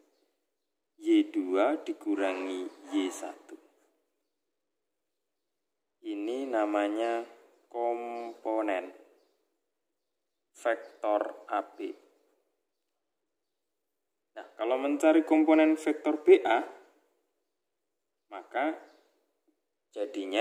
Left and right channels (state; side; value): identical; both; correlation 1.00